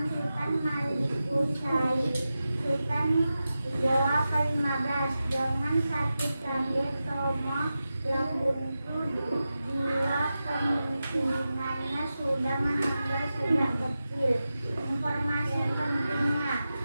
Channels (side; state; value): both; inverted; correlation -0.93